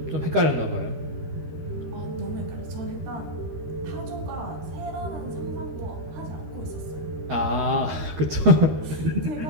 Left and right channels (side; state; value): left; late; 13 ms